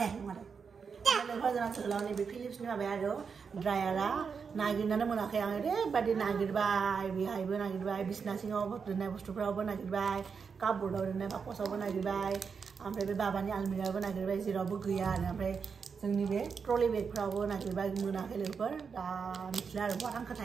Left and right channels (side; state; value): left; quieter; 5.9 dB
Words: नङा लोगोफोर जोंना जोहोलावनि बे फिलिप्सनि माबाया आरो ड्रायारा नागिरनानै मोनाखै आं ओरैबायदि नागिरबाय बेहायबो नागिरबाय बिसना सिङाव दोननाय बुस्थुफ्रावबो नागिरबाय कापबोर्डआव दोननाय बाकसावबो नागिरबाय ओमफ्राय बे बाबानि आलमिरायावबो नागिरबाय जेरावबो गैया आरो ओमफ्राय जोंनि बे ट्रलि बेगफ्रावबो नागिरबाय मोनाखै लोगोफोर दा मिथिला आरो बहा